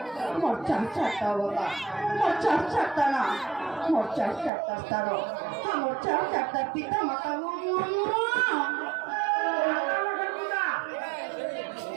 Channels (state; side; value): drops out; left; at 4.5 s